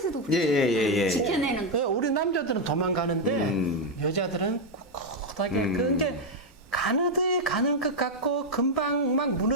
그렇죠. 예. 지켜내는 거. 예, 우리 남자들은 도망가는데 여자들은 꿋꿋하게 그게 가느드에 가는 것 같고 금방 막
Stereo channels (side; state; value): both; normal; correlation 0.02